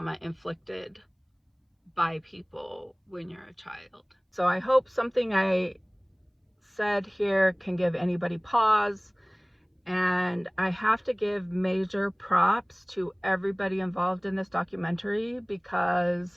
inflicted by people when you're a child. So I hope something I said here can give anybody pause. And I have to give major props to everybody involved in this documentary, because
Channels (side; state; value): both; identical; correlation 1.00